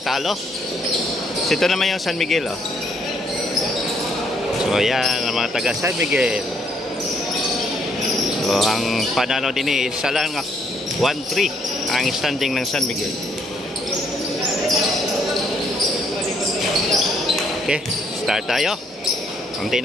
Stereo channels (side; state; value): both; normal; correlation 0.69